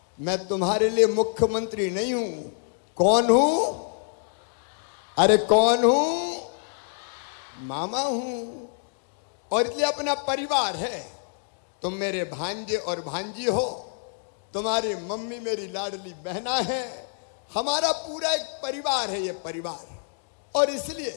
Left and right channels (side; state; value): right; silent; digital silence